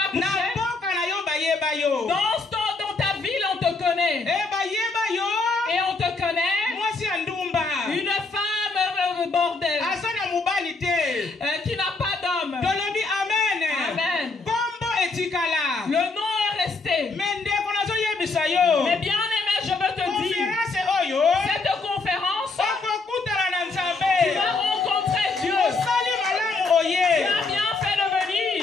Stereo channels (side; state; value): right; quieter; 3.8 dB